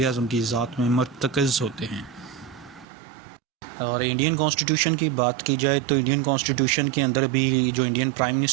आज़म की ज़ात में मरतकज़ होते हैं। और इंडियन कॉन्स्टिट्यूशन की बात की जाए तो इंडियन कॉन्स्टिट्यूशन के अंदर भी जो इंडियन प्राइम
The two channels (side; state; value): left; drops out; at 2.9 s